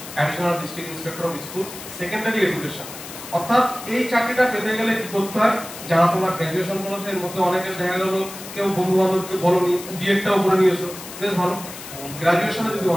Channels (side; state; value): left; noise; hiss, 13 dB below the sound